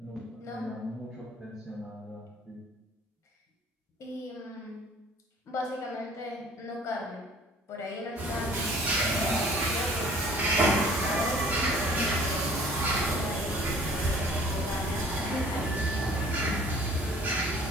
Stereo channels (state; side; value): normal; both; correlation 0.52